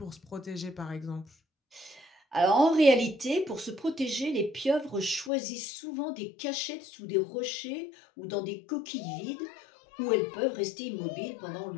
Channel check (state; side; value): drops out; right; at 5.3 s